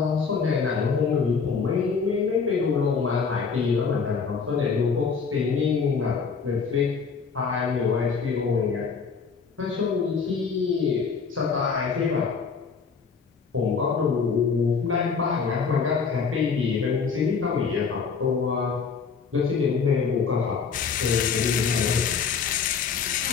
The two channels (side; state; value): right; quieter; 5.6 dB